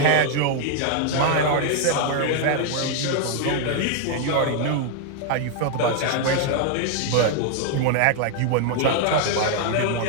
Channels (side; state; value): both; different; correlation 0.00